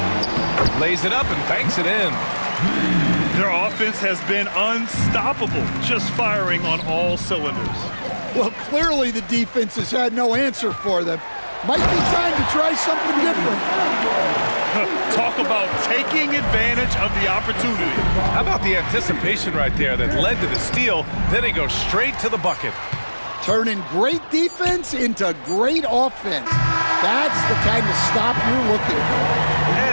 Lays it up and banks it in. Their offense has been unstoppable, just firing on all cylinders. Well, clearly the defense has had no answer for them. Might be time to try something different. Talk about taking advantage of the opportunity. How about the anticipation right there that led to the steal? Then he goes straight to the bucket. Turning great defense into great offense. That's the kind of stop you're looking for.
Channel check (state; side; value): inverted; both; correlation -1.00